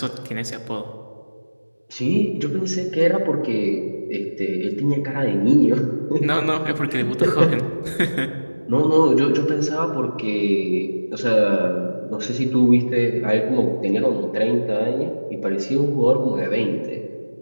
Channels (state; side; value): inverted; both; correlation -1.00